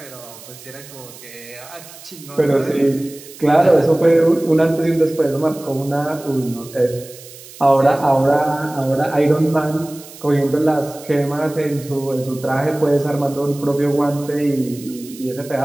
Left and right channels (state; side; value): noise; right; hiss, 18 dB below the sound